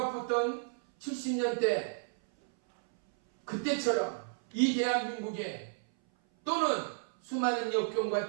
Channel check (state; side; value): silent; left; 56 dB below the other